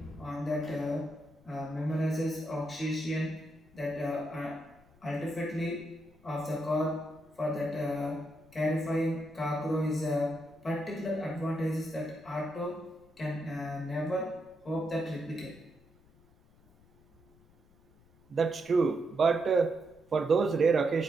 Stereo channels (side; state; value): left; noise; rumble, 28 dB below the sound